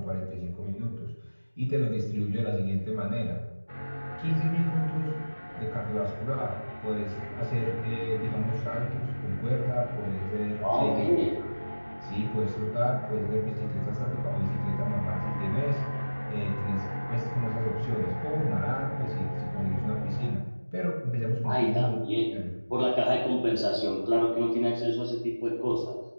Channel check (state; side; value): inverted; both; correlation -1.00